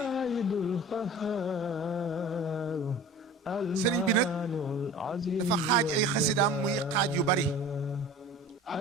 yi sëriñ bi nag dafa xaaj ay xasidaam muy xaaj yu bari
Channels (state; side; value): normal; both; correlation 0.40